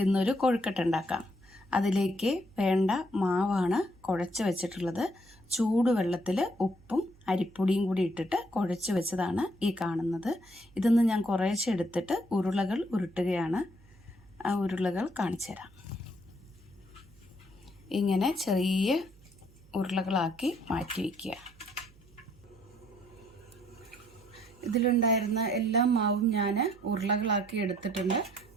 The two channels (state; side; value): noise; right; hum, 26 dB below the sound